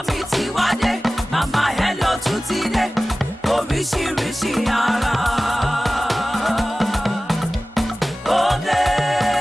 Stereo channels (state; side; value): normal; both; correlation 0.97